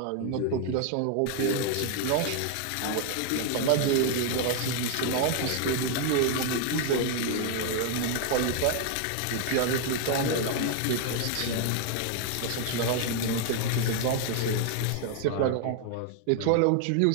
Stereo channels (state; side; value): different; both; correlation 0.00